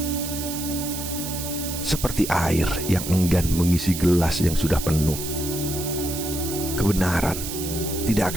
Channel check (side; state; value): right; noise; hiss, 7 dB below the sound